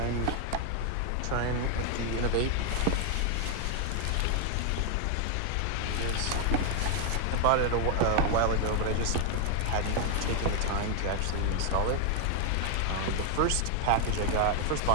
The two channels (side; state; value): both; different; correlation 0.00